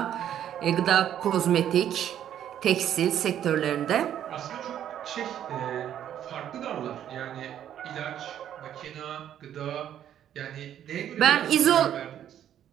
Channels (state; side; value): quieter; left; 10.5 dB